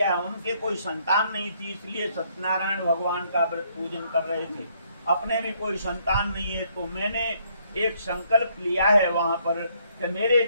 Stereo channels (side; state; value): both; inverted; correlation -0.69